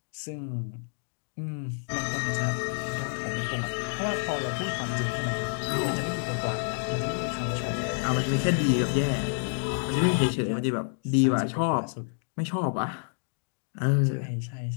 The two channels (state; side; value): silent; right; digital silence